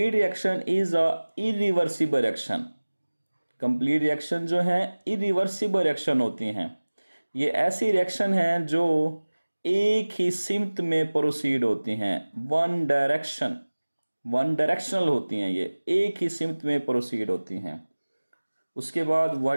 reaction is a irreversible reaction. Complete reaction जो है इरिवर्सिबल रिएक्शन होती हैं। ये ऐसी रिएक्शन हैं जो एक ही सिमत में प्रोसीड होती हैं, वन डायरेक्शनल होती हैं, ये एक ही सिमत में प्रोसीड होती हैं। उसके बाद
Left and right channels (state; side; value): inverted; both; correlation -1.00